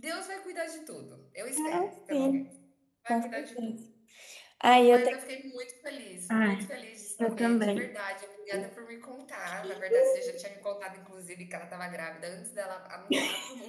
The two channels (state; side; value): identical; both; correlation 1.00